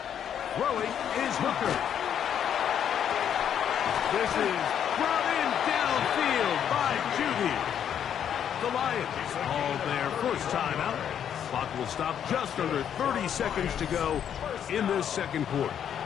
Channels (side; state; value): right; quieter; 9.0 dB